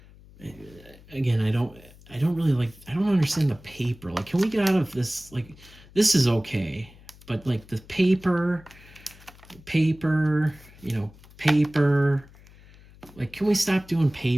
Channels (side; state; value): left; noise; hum, 23 dB below the sound